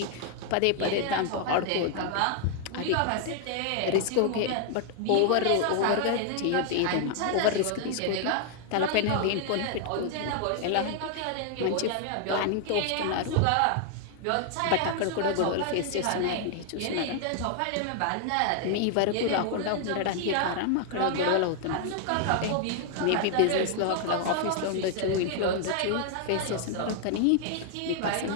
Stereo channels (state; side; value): different; both; correlation 0.00